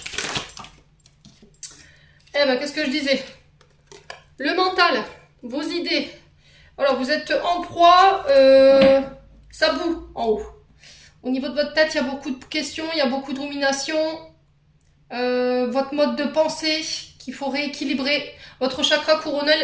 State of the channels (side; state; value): both; identical; correlation 1.00